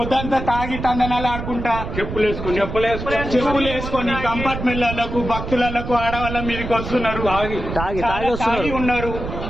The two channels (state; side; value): noise; right; rumble, 7 dB below the sound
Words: తాగి తందనాలు ఆడుకుంటా చెప్పులు వేసుకొని కంపార్ట్మెంట్లకు భక్తులకు ఆడవాళ్ళ మీదకి వస్తున్నారు, తాగి ఉన్నారు.